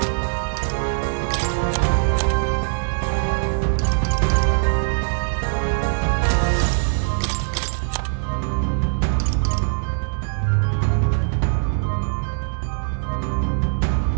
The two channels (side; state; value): left; silent; 60 dB below the other